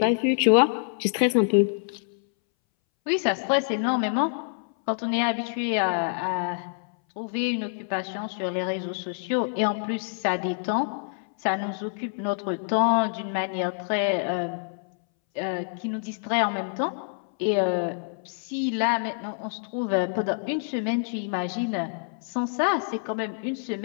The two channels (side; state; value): right; silent; 60 dB below the other